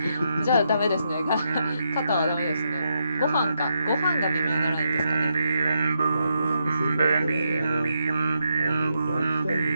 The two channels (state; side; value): inverted; both; correlation -0.81